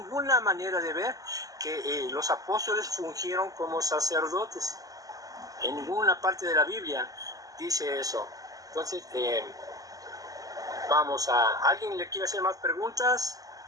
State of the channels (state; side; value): late; left; 0.17 ms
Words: manera de ver que los apóstoles fungieron como sacerdotes. En ninguna parte de la Biblia dice eso. Entonces, ¿alguien le quiere hacer más preguntas?